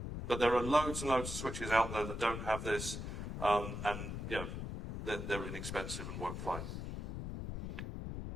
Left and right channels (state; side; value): noise; left; rumble, 5 dB below the sound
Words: But there are loads and loads of switches out there that don't have this, and you know, they're inexpensive and work fine.